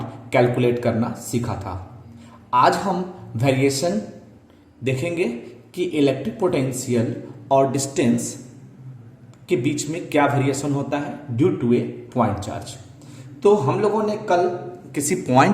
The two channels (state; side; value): identical; both; correlation 1.00